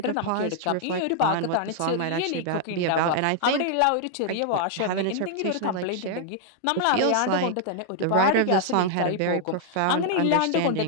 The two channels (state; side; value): different; both; correlation -0.01